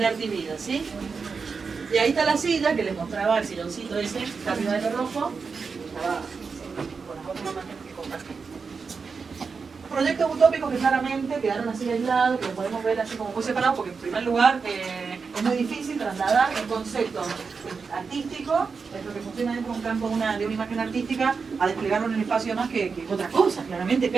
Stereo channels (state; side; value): quieter; left; 5.1 dB